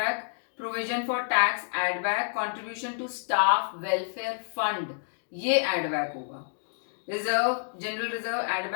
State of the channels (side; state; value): right; silent; digital silence